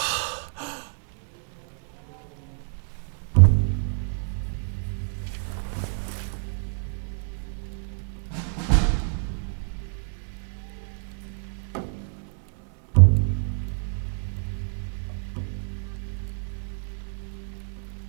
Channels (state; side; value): silent; left; 59 dB below the other